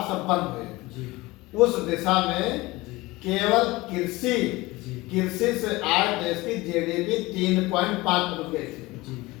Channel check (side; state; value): right; quieter; 20.9 dB